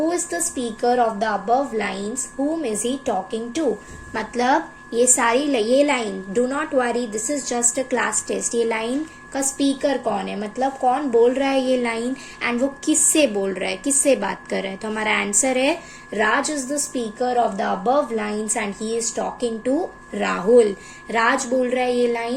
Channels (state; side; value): identical; both; correlation 1.00